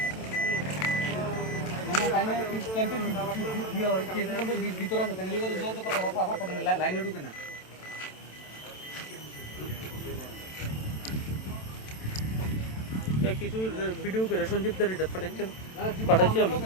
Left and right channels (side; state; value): right; late; 27 ms